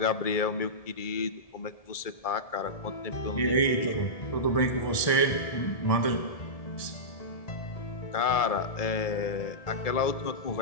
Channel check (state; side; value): late; right; 1.7 ms